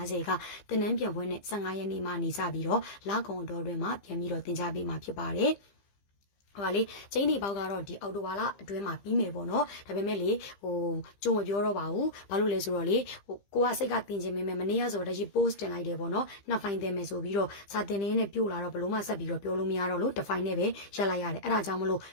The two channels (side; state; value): right; late; 15 ms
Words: ကတင်နန်းပြန်ပွဲနဲ့15ရက်နေ့မှနေကြပြီးတော့လကုံတော်တွင်မှပြန်ပြီးတော့တင် जा ပေးမှာဖြစ်ပါတယ်ဟိုလေကျင်းဒီပေါက်ကတော့ဒီအော်တိုဘာလအတွင်းမှာပြီးမယ်ပေါ့နော်ဒါပေမဲ့လေကြုံမပြောတော့ပါဘူးဘာလို့လဲဆိုတော့လေကိုကစိတ်ကတင်ခြင်းမင်းမနေ့ကဆိုတော့ဒီ post တင်လိုက်တယ်ပေါ့နော်နှစ်ဖိုင်တင်မယ်ဆိုပြီးတော့စာတင်နေနဲ့ပြို့လာတော့ဘလို့မှဆက်ပြီးတော့ပြောလို့မရတော့လို့တစ်ဖိုင်နဲ့ပဲရက်လိုက်ရတယ်အဲ့ဒါကြောင့်မလို့